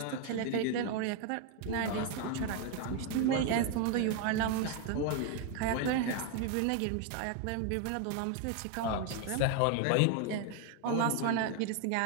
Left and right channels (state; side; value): different; both; correlation 0.01